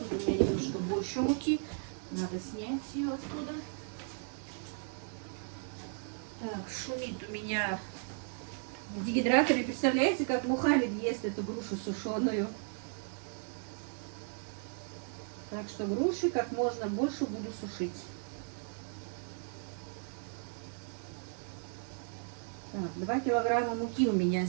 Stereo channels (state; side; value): silent; left; 54 dB below the other